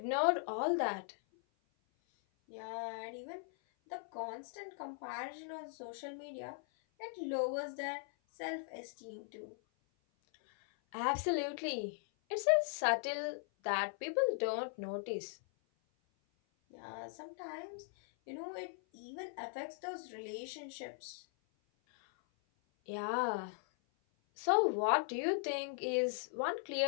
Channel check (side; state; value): right; silent; 52 dB below the other